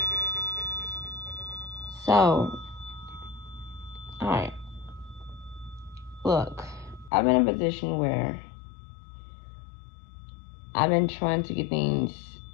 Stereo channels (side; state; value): right; drops out; at 7.1 s